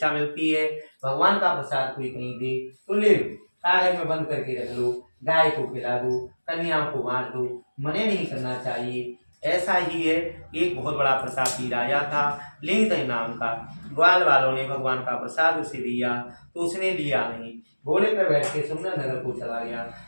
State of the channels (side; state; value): both; inverted; correlation -1.00